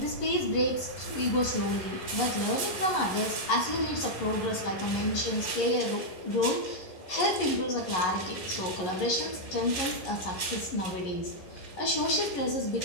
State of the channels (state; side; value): late; right; 11 ms